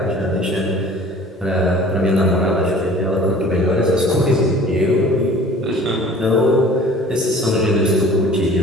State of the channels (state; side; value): normal; both; correlation 0.47